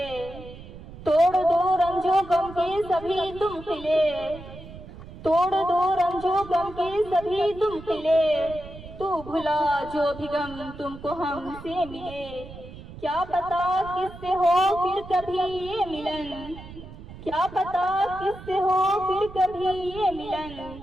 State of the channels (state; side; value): noise; right; rumble, 15 dB below the sound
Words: तोड़ दो रंजो गम के सभी तुम किले, तोड़ दो रंजो गम के सभी तुम किले, तू भुला जो भी गम तुमको हमसे मिले, क्या पता किससे हो फिर कभी ये मिलन, क्या पता किससे हो फिर कभी ये मिलन,